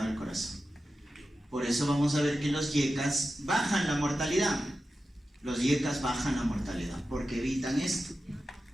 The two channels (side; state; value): both; normal; correlation 0.92